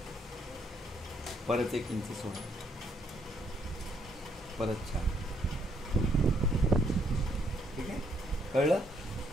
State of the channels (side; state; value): both; normal; correlation 0.72